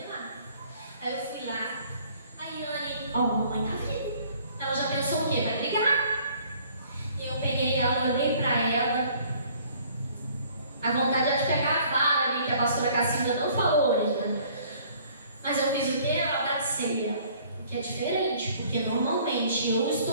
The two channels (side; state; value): both; inverted; correlation -0.57